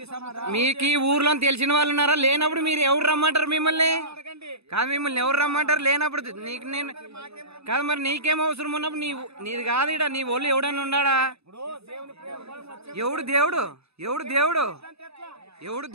మీకు ఈ ఊర్లో తెలిసిన వాళ్ళు ఉన్నారా? లేనప్పుడు మీరు ఎవరు రమ్మంటారు మిమ్మల్ని? కాదు, మిమ్మల్ని ఎవరు రమ్మంటారు లేనప్పుడు? నీకు నేను కాదు, మరి నీకేం అవసరం ఉన్నప్పుడు నీది కాదు. ఇడ నీ ఒళ్ళు ఎవడన్నా ఉన్నాడా? ఎవడు దేవుడు? ఎవడు దేవుడు? ఎవడు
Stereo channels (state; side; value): late; left; 0.79 ms